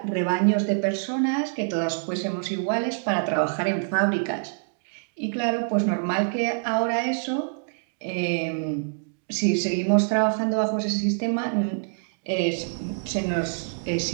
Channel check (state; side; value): silent; left; digital silence